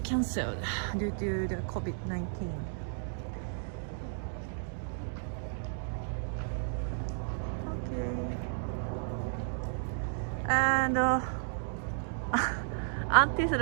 cancelled due to the COVID-19. And until the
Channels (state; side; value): silent; left; digital silence